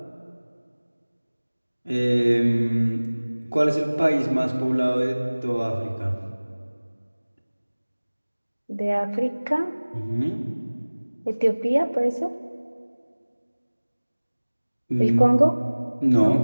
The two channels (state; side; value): inverted; both; correlation -1.00